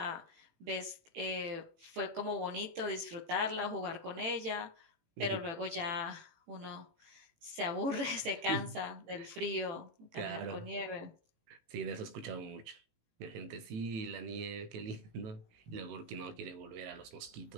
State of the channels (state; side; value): late; left; 18 ms